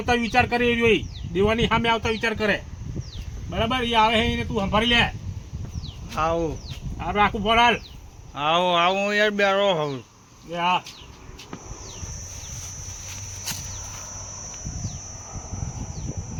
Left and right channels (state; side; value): identical; both; correlation 1.00